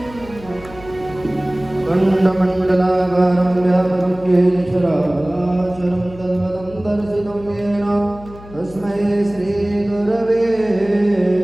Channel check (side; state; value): left; noise; hum, 18 dB below the sound